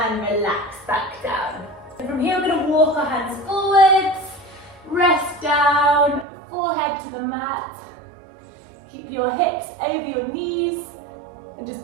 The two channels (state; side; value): drops out; left; at 6.2 s